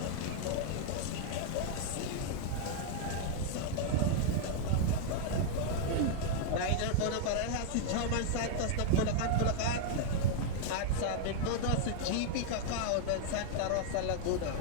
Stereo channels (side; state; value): both; different; correlation -0.01